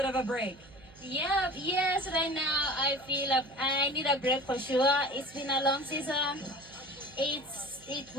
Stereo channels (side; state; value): right; noise; hum, 23 dB below the sound